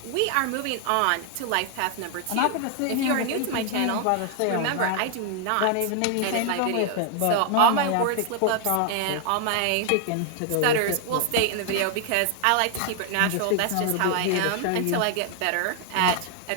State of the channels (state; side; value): different; both; correlation 0.00